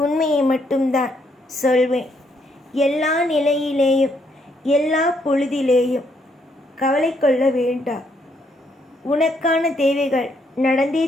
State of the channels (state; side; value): normal; both; correlation 0.73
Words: உண்மையை மட்டும்தான் சொல்வேன். எல்லா நிலையிலேயும் எல்லா பொழுதிலேயும் கவலை கொள்ள வேண்டாம். உனக்கான தேவைகள் நடந்தே